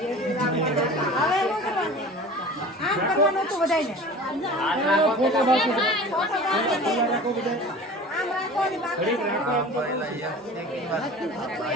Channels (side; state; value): both; normal; correlation 0.39